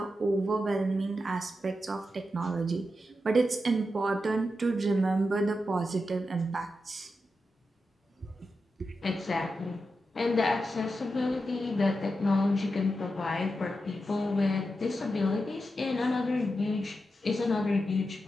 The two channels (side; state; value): both; normal; correlation 0.88